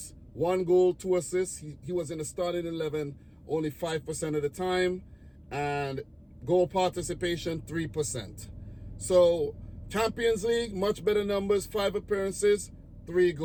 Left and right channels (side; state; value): both; identical; correlation 1.00